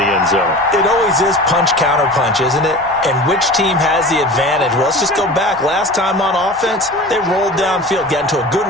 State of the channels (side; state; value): both; normal; correlation 0.36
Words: end zone. It always is punch-counter-punch, isn't it? And which team has the advantage? Well, let's just go back. Last time on offense, they rolled downfield, got into a good